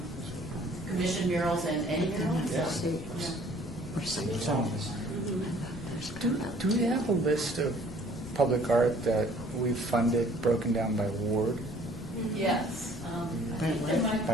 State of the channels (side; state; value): both; normal; correlation 0.56